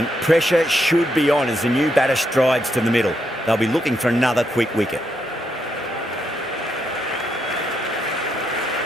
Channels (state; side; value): normal; both; correlation 0.79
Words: Pressure should be on as the new batter strides to the middle. They'll be looking for another quick wicket.